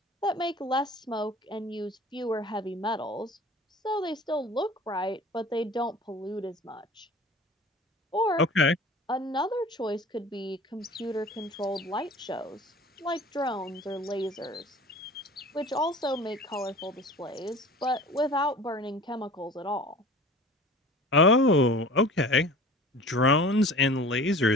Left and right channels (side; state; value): both; normal; correlation 0.42